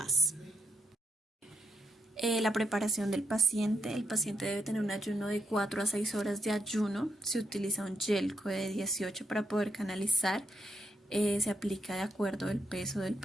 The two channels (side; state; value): both; normal; correlation 0.81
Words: La preparación del paciente. El paciente debe tener un ayuno de 4 a 6 horas de ayuno. Se utiliza un Jelco de 18 para poder canalizar. Se aplica de acuerdo al peso del